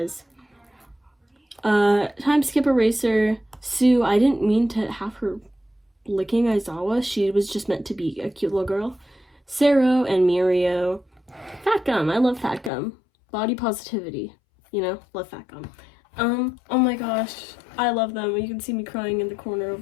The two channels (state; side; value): drops out; right; at 12.7 s